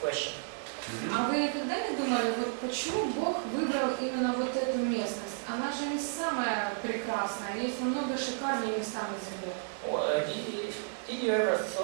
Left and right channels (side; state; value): left; silent; 56 dB below the other